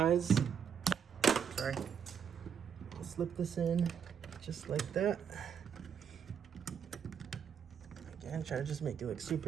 Sorry. I'll slip this in just like that. Again, try to just make it look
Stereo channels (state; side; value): quieter; left; 7.7 dB